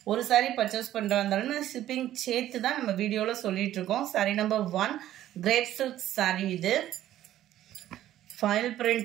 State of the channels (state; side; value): quieter; left; 12.9 dB